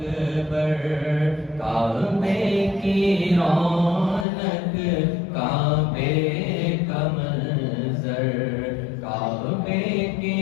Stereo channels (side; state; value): right; drops out; at 4.2 s